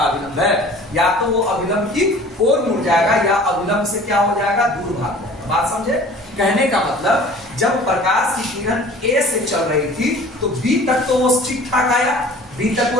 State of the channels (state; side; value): normal; both; correlation 0.46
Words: अभिलंब है। या तो वो अभिलंब की ओर मुड़ जाएगा, या अभिलंब से क्या हो जाएगा, दूर भाग जाएगा। बात समझे? कहने का मतलब, जब प्रकाश की किरण ए से चल रही थी तो बी तक तो वो ठीक ठाक आया,